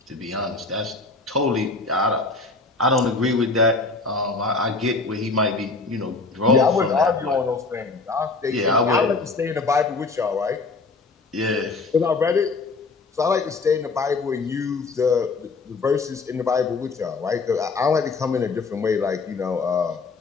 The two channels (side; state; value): right; quieter; 3.8 dB